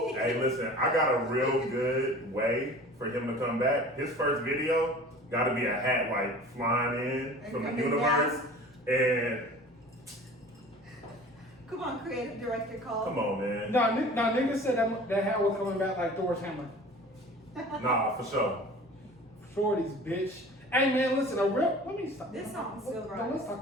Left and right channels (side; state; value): both; normal; correlation 0.42